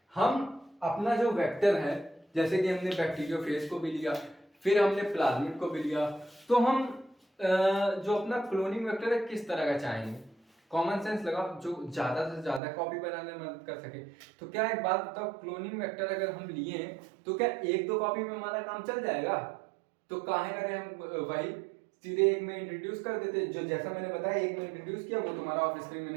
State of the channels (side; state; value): left; drops out; at 12.6 s